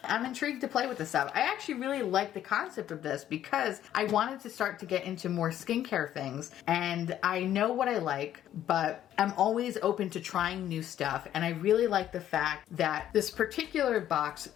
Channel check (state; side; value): quieter; right; 11.5 dB